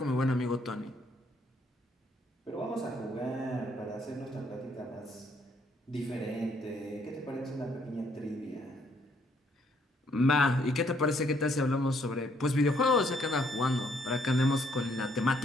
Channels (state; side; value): normal; both; correlation 0.69